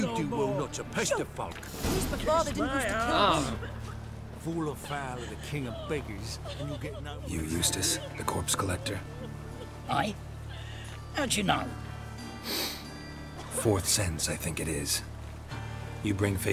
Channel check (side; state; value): both; identical; correlation 1.00